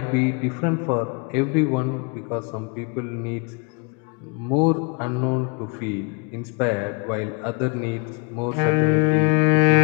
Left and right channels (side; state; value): right; quieter; 34.0 dB